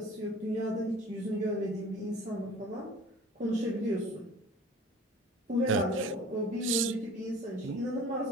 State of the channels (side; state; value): both; normal; correlation 0.46